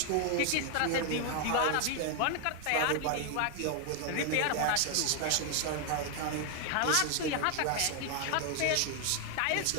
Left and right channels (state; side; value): different; both; correlation 0.00